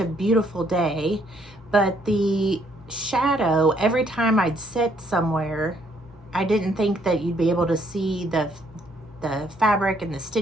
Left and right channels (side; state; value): both; normal; correlation 0.68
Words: beautiful day, but the shadow, every time I'd sit somewhere, I didn't think that you'd be able to see the fabric and the